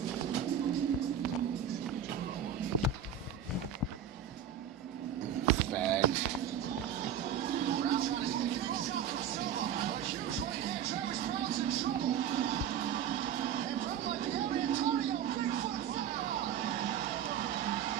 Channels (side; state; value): left; quieter; 8.8 dB